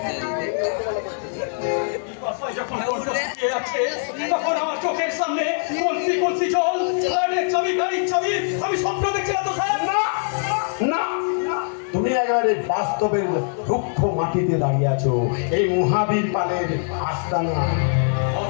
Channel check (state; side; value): silent; right; digital silence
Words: যখন আছে তখন আমার চোখের সামনে কলসি জল, চাবি গাড়ির চাবি, আমি স্বপ্ন দেখছিলাম তো স্যার। তুমি একেবারে বাস্তবের রুক্ষ মাটিতে দাঁড়িয়ে আছো এই মহাবীর পালের আস্তানা।